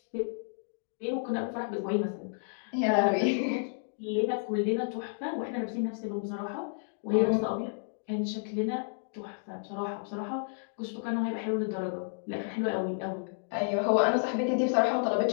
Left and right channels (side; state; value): right; silent; digital silence